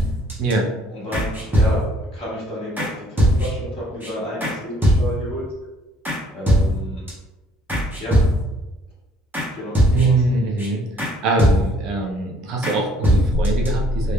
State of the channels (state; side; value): normal; both; correlation 0.63